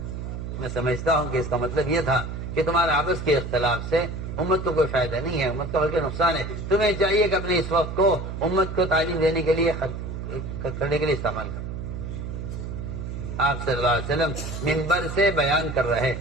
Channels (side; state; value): right; noise; hum, 6 dB below the sound